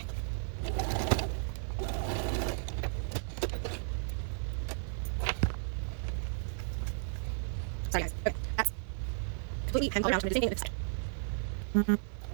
Sorry guys. Okay. That's completely hemmed all around. So I'm going to do the same thing on this side.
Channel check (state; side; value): silent; left; digital silence